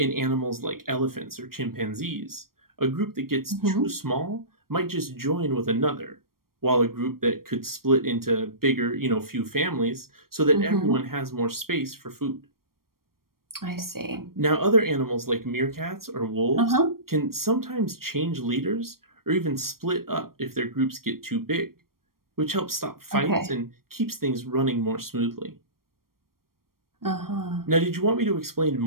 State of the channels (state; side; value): late; left; 0.93 ms